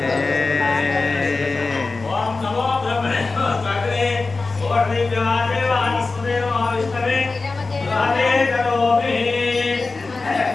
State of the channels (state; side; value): quieter; right; 3.8 dB